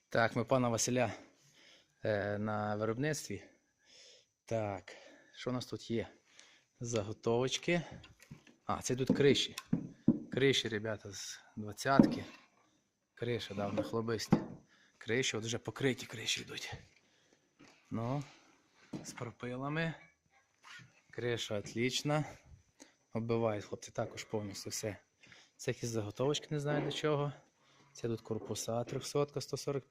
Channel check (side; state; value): both; identical; correlation 1.00